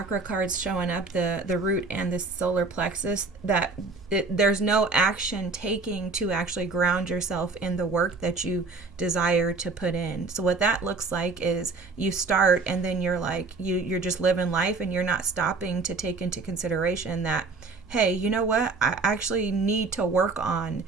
cards showing up, the root and the solar plexus, that there's no action taking to actually ground yourself in the work that you desire to put in. So what that looks like is you start, and then you're like, you're just living life, and you're not stopping to take into consideration that, hey, you know what, I actually need to work on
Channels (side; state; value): left; quieter; 4.0 dB